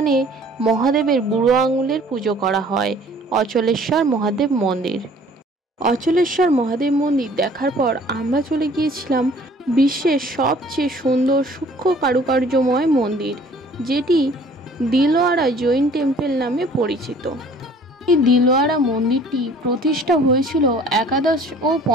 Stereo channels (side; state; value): both; normal; correlation 0.53